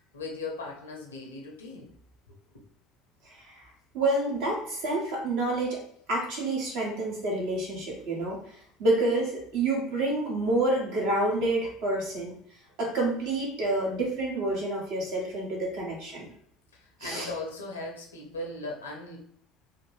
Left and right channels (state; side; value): normal; both; correlation 0.35